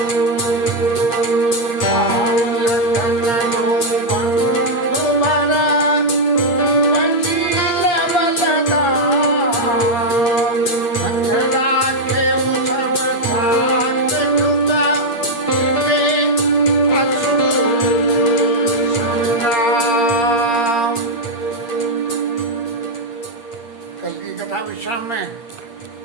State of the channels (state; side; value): late; right; 8.6 ms